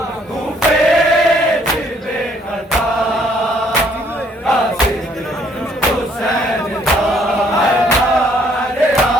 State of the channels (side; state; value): both; normal; correlation 0.65